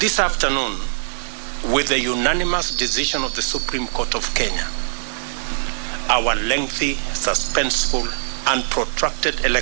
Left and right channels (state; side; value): silent; left; 65 dB below the other